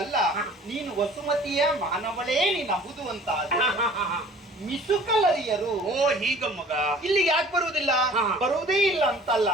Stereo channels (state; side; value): normal; both; correlation 0.49